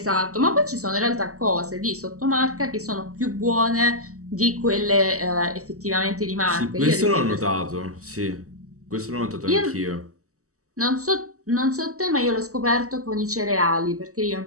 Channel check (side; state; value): left; late; 0.65 ms